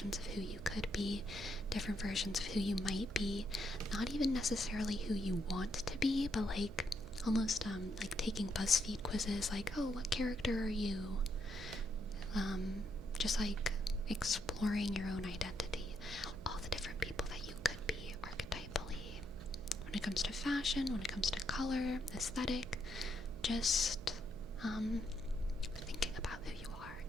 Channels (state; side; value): noise; right; hum, 14 dB below the sound